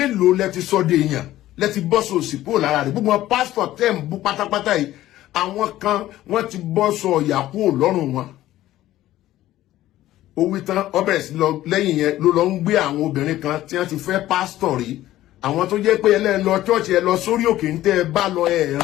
lẹ ti sọ de èèyàn, lẹ ti bọ́ sọ òsìpò lára rẹ̀. Gbogbo pastor tẹ́ ń bú pátápátá yìí, àwọn kan wọ́n ti bọ́ sọ ọ̀yà kúrò lọ́rùn wọn. Ó wí tán ọbẹ̀ sí lọ lẹ́yìn yẹn ló lọ ń gbé àwọn obìnrin kan tí wọ́n ti fẹ́ pastor rí, àwọn tó jẹ́ pé ẹ lọ church, ẹ lọ sórí òkè ń tẹ́ ẹ bá lọ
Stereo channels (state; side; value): quieter; right; 14.6 dB